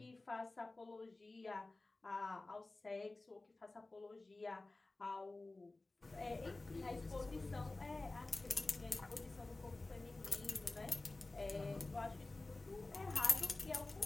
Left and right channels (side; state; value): right; quieter; 3.2 dB